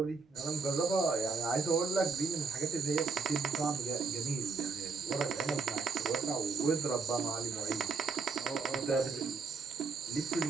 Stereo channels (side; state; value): left; quieter; 4.8 dB